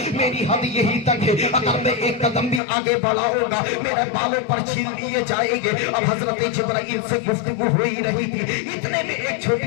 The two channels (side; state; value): right; drops out; at 2.6 s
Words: मेरी हद यही तक है, अगर मैं एक कदम भी आगे बढ़ाऊंगा मेरे बालों पर छीन लिए जाएंगे। अब हजरत जिब्राइल से गुफ्तगू हो ही रही थी, इतने में एक